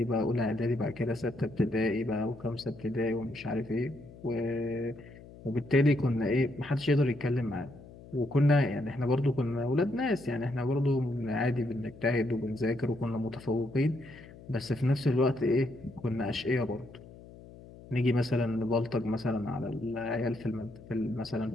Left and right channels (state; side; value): noise; left; hum, 19 dB below the sound